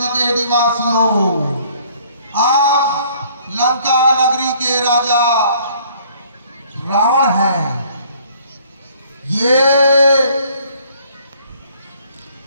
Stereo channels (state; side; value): inverted; both; correlation -0.59